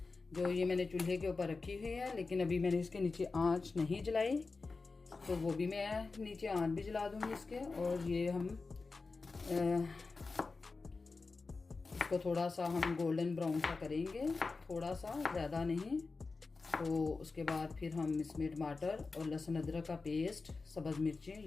जो ये मैंने चूल्हे के ऊपर रखी हुई है, लेकिन अभी मैंने इसके नीचे आंच नहीं जलाई, तो वो भी मैं नीचे आंच भी जला दूंगी इसके। और ये हम इसको थोड़ा सा हम गोल्डन ब्राउन सा करेंगे, थोड़ा सा, ज़्यादा नहीं। तो उसके बाद फिर हम इसमें टमाटर और लहसुन अदरक का पेस्ट, सब्ज़ मिर्चें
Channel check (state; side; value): quieter; right; 4.0 dB